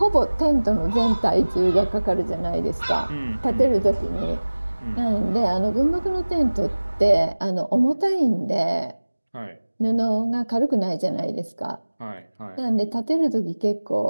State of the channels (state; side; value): inverted; both; correlation -1.00